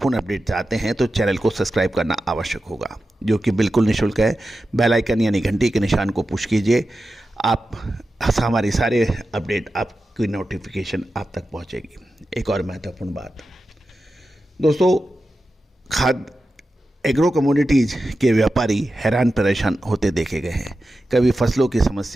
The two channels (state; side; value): normal; both; correlation 0.92